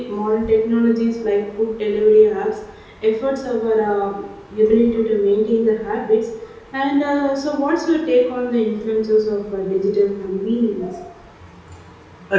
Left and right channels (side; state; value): both; identical; correlation 1.00